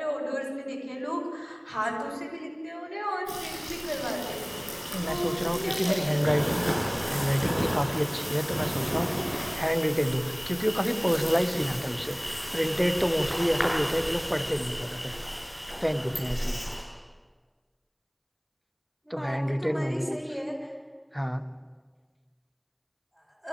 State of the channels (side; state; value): both; identical; correlation 1.00